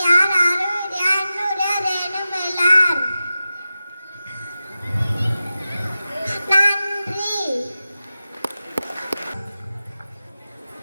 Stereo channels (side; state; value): both; inverted; correlation -0.93